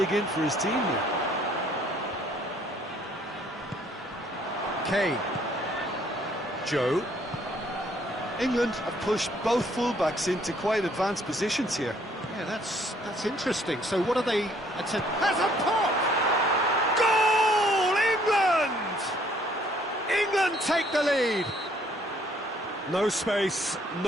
in for his team here. Kane. Gioi. England have pushed both fullbacks into quite advanced positions here. Yeah, that's interesting. So what are they attempting? Has a pop! Goal! England! England take the lead. No space,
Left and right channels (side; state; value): both; normal; correlation 0.63